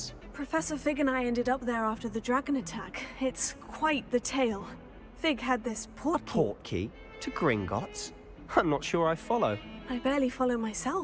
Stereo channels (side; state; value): both; identical; correlation 1.00